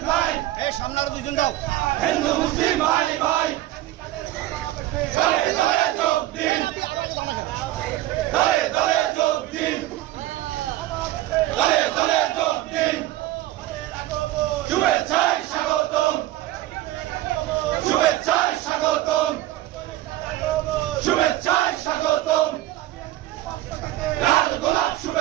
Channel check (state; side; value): quieter; left; 15.4 dB